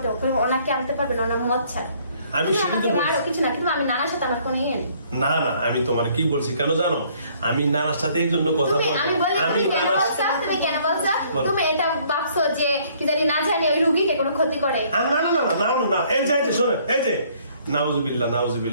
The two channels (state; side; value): inverted; both; correlation -0.62